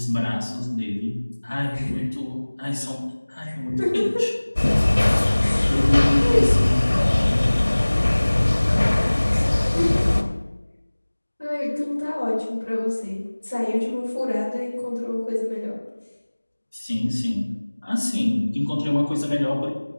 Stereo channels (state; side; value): inverted; both; correlation -1.00